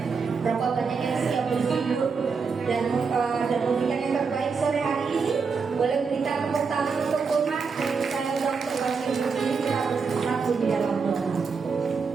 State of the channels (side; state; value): left; quieter; 5.2 dB